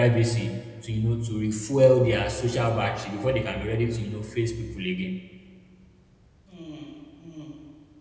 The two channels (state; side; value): identical; both; correlation 1.00